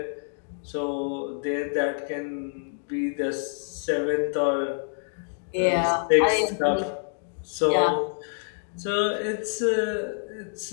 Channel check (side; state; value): right; silent; digital silence